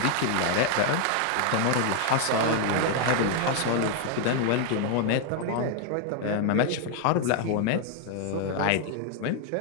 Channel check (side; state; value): both; different; correlation 0.00